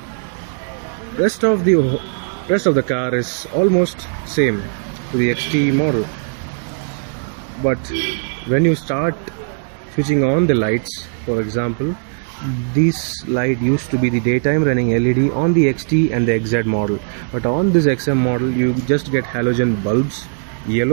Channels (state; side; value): silent; left; digital silence